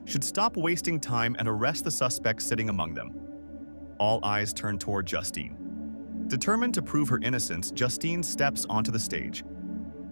should stop wasting time and arrest the suspect sitting among them. All eyes turn toward Justine. Determined to prove her innocence, Justine steps onto the stage.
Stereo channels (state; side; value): inverted; both; correlation -1.00